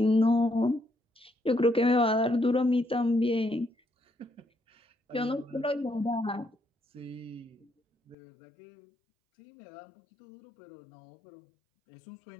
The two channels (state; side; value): drops out; right; at 8.2 s